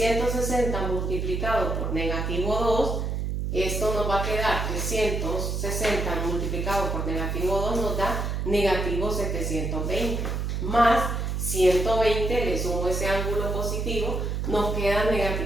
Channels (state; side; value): noise; right; hum, 1 dB below the sound